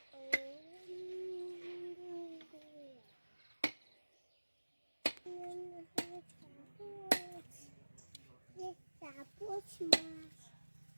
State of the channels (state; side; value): inverted; both; correlation -1.00